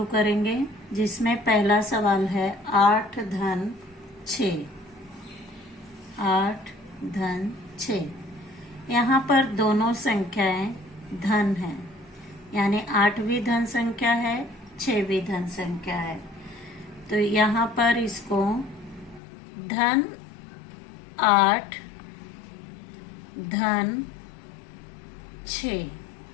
करेंगे, जिसमें पहला सवाल है 8 धन 6। 8 धन 6। यहाँ पर दोनों संख्याएं धन हैं, यानी 8 भी धन संख्या है, 6 भी धन संख्या है। तो यहाँ पर इसको धन 8 धन 6,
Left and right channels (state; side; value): drops out; right; at 19.2 s